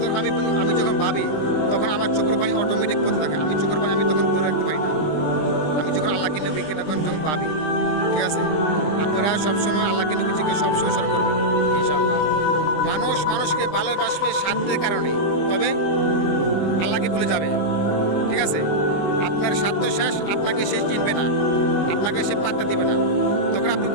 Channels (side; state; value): right; late; 20 ms